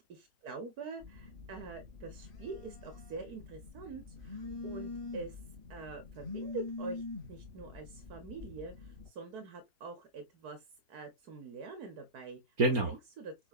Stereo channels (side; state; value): left; late; 4.3 ms